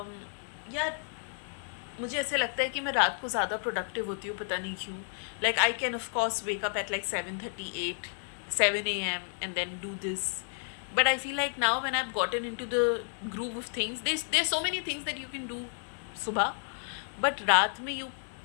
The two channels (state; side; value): silent; right; digital silence